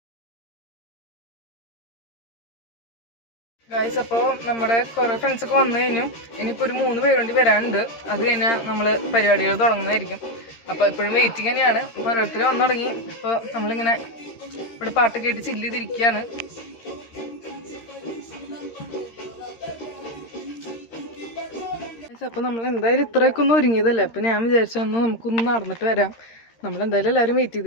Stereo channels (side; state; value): right; late; 13 ms